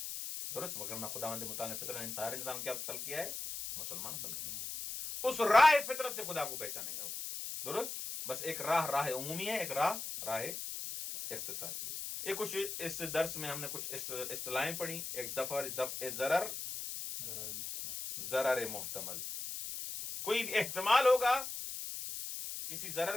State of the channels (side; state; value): left; noise; hiss, 6 dB below the sound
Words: درست. وگرنہ خداوند متعال نے فطرت سارے انسان کیا خلق کیا ہے؟ مسلمان خلق کیا. اس راہ فطرت سے خدا کو پہچانے گا وہ. درست. بس ایک راہ عمومی ہے، ایک راہ اختصاصی ہے. ایک کچھ اس درس میں ہم نے کچھ اصطلاحیں پڑھی. ایک دفع ضرر محتمل، کوئی بھی احتمال ہوگا، کسی